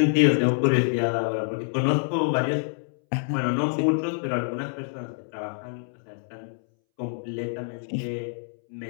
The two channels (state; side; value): silent; right; 61 dB below the other